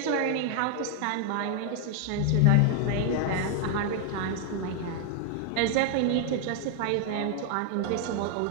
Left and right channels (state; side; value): different; both; correlation 0.00